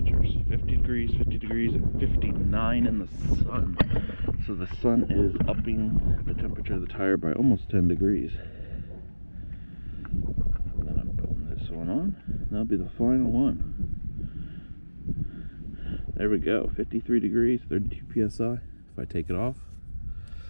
50 degrees, and 59 in the sun. So the sun is upping the temperature of the tire by almost 10 degrees. And then I'm putting this one on. That'll be the final one. There we go. 53 degrees, 32 psi. If I take it off,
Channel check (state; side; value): inverted; both; correlation -1.00